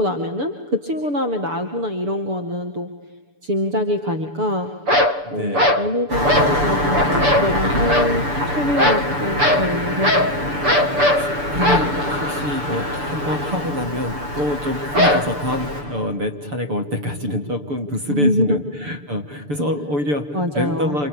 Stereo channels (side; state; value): left; late; 6.9 ms